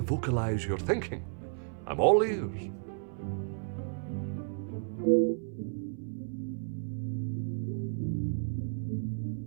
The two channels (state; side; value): silent; left; 56 dB below the other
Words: vocalize your thinking. I'm all ears.